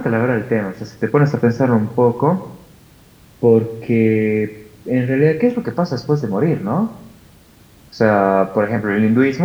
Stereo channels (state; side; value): identical; both; correlation 1.00